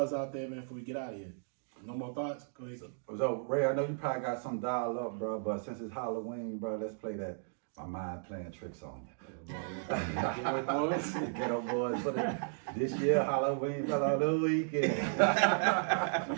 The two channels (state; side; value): silent; left; digital silence